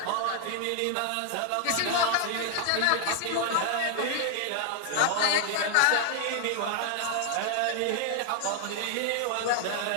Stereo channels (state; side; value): different; both; correlation 0.00